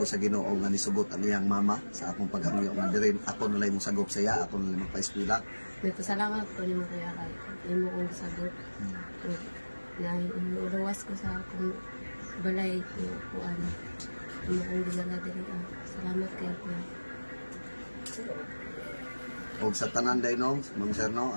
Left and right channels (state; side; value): inverted; both; correlation -1.00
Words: sa Ginoo nga nisugot ang iyang mama sa akong paghangyo nga dirin ako nalay mo sagop sa iya, ako nalay magpa-eskwela. Nagpasalamat ko ni mo kuya kay imo kong sagot. Na iluwas ko sa akong balay ko kuan. Imo kong dinala diri. Salamat kay kuya. Og sa tanan day no, Ma'am Sir no,